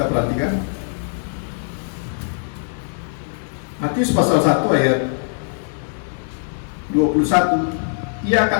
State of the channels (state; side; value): silent; right; digital silence